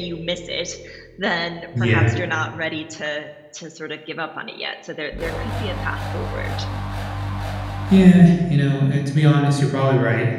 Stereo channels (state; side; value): identical; both; correlation 1.00